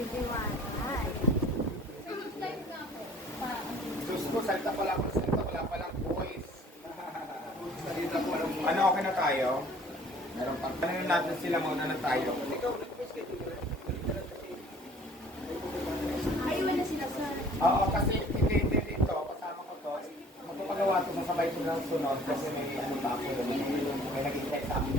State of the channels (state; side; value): normal; both; correlation 0.52